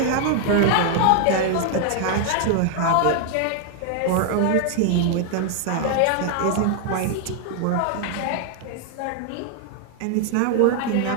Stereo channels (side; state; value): both; different; correlation 0.00